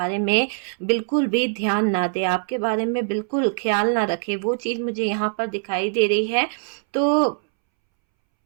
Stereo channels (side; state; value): left; silent; 64 dB below the other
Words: में बिल्कुल भी ध्यान ना दे, आपके बारे में बिल्कुल ख्याल ना रखे। वो चीज मुझे यहाँ पर दिखाई दे रही है। तो